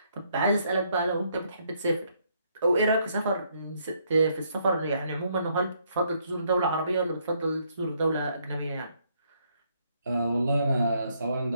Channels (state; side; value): inverted; both; correlation -0.71